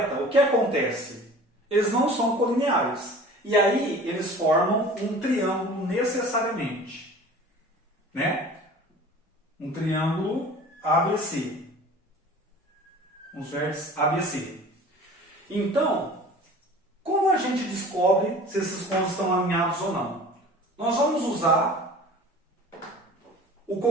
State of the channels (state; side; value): normal; both; correlation 0.43